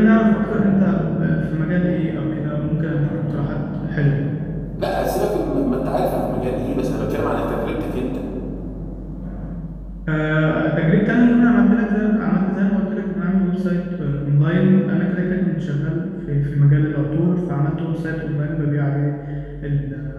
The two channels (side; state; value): both; identical; correlation 1.00